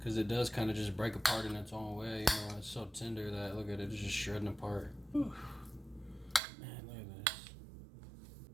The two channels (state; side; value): drops out; left; at 6.4 s